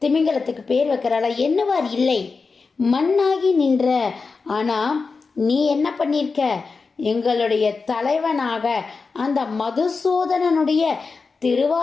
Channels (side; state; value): right; quieter; 4.5 dB